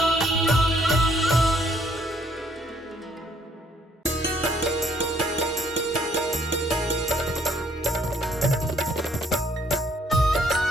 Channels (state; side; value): normal; both; correlation 0.66